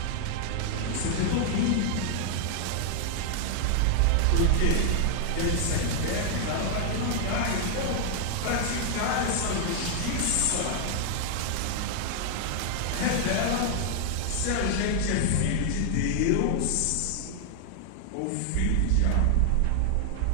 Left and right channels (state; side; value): different; both; correlation 0.00